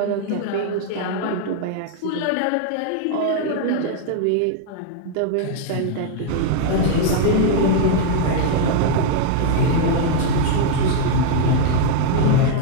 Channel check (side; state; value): both; different; correlation 0.00